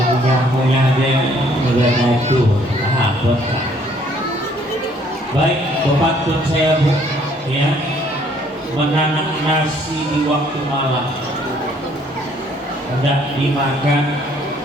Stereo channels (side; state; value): both; normal; correlation 0.62